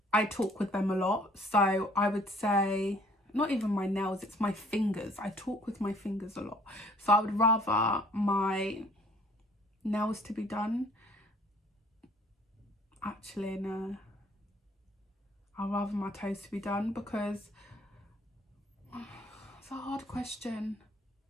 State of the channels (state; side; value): normal; both; correlation 0.57